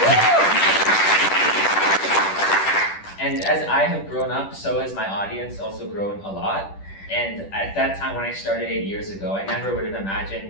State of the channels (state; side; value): late; right; 10 ms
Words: And as I have grown up, so has my audience also grown a lot. And at that time when I started 8 years ago, I never would have